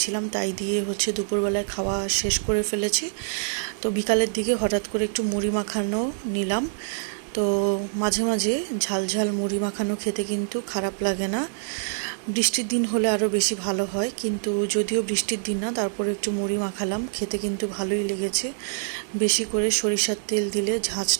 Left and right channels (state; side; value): silent; left; digital silence